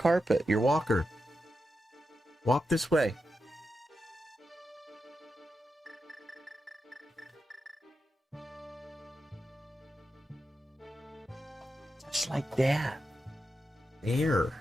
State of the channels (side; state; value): both; normal; correlation 0.88